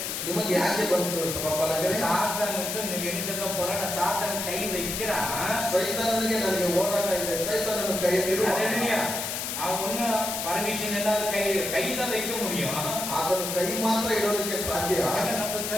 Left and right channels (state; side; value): noise; left; hiss, 3 dB below the sound